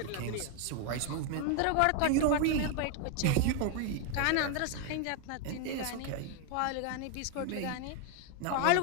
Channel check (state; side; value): different; both; correlation 0.01